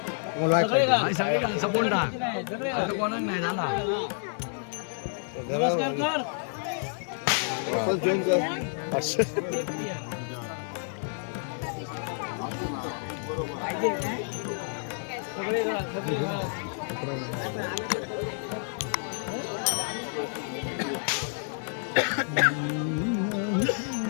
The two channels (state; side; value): silent; right; 58 dB below the other